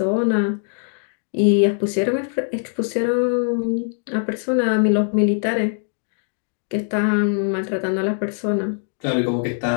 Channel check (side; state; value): right; silent; digital silence